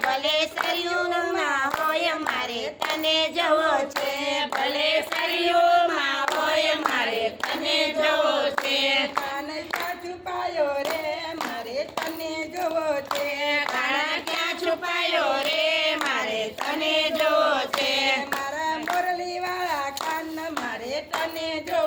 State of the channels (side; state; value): both; identical; correlation 1.00